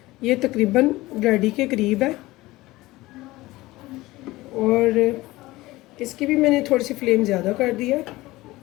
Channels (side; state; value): right; quieter; 19.1 dB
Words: ये तकरीबन रेडी के करीब है और इसकी भी मैंने थोड़ी सी फ्लेम ज़्यादा कर दी है